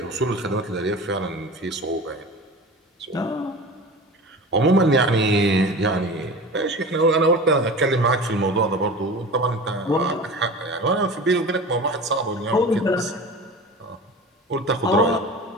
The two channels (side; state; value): both; normal; correlation 0.34